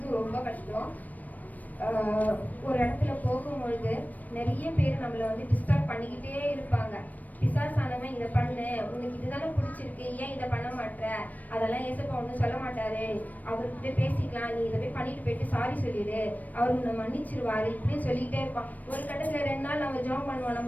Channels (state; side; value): late; right; 0.079 ms